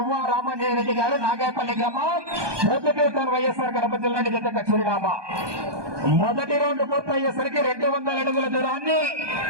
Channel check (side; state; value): left; late; 1.2 ms